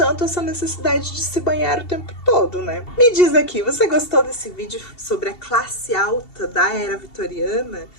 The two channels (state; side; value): late; right; 2.7 ms